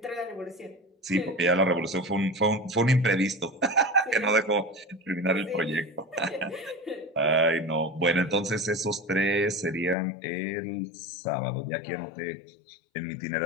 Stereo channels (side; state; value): right; drops out; at 10.0 s